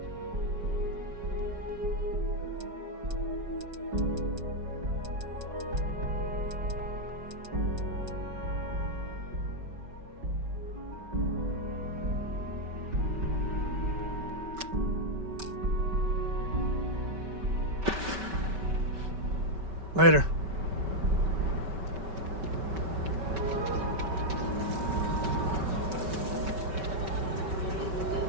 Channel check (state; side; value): late; left; 5.2 ms